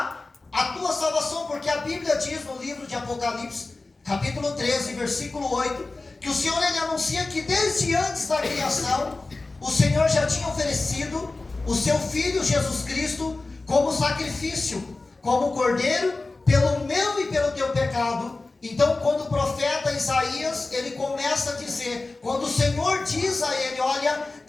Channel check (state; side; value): quieter; right; 3.4 dB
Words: a tua salvação, porque a Bíblia diz no livro de Apocalipse, capítulo 13, versículo 8, que o Senhor ele anuncia que desde antes da criação, o Senhor já tinha oferecido o seu Filho Jesus Cristo como sacrifício, como cordeiro, pelo meu e pelo teu pecado. Então quando o profeta Isaías, ele começa a dizer, quando o Senhor diz a ele, olha,